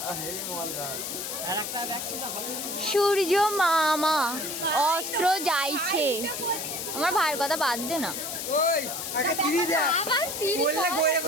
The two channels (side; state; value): left; noise; hiss, 5 dB below the sound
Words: সূর্য মামা অস্ত্র যাইছে। আমার ভাইয়ের কথা বাদ দে না। ওই আগে সিঁড়ি দে। বললে গইরে